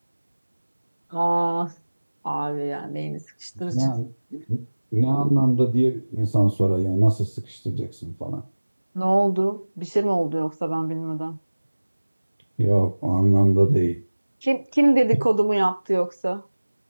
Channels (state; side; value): inverted; both; correlation -1.00